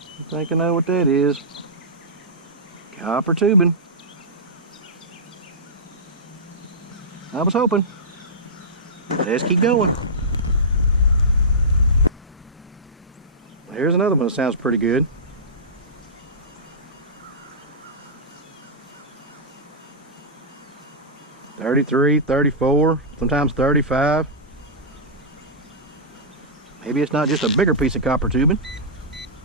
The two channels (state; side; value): normal; both; correlation -0.15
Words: I think I know what that is. Copper tubing. I was hoping. Let's keep going. Here's another one that sounds pretty good. 33, 34, sometimes 35. Maybe it's not just a bigger piece of copper tubing.